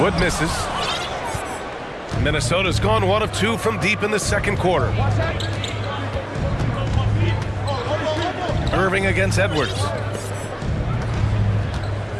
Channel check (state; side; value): identical; both; correlation 1.00